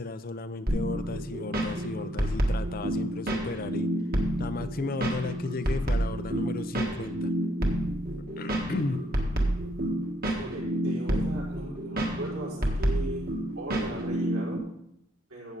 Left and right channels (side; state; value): both; normal; correlation 0.73